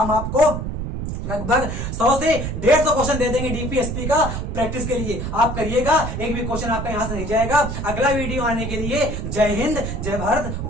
आपको लगभग 100 से 150 क्वेश्चन दे देंगे डीपीएसपी का प्रैक्टिस के लिए। आप करिएगा, एक भी क्वेश्चन आपका यहां से नहीं जाएगा। अगला वीडियो आने के लिए जय हिंद, जय भारत,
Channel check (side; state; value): right; noise; rumble, 4 dB below the sound